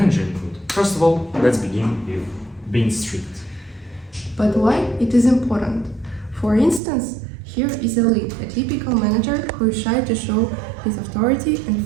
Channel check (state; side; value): drops out; left; at 6.8 s